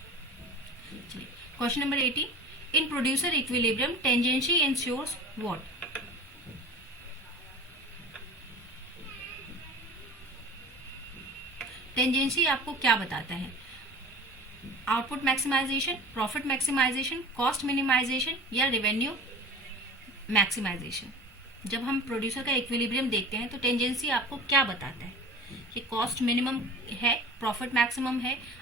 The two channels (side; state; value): both; normal; correlation 0.38